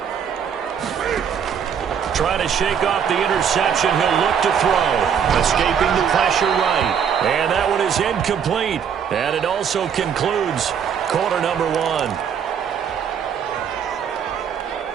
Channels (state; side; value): quieter; left; 7.7 dB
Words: Trying to shake off the interception. He'll look to throw. Escaping the pressure right. And that one is incomplete. And it also concludes quarter number one.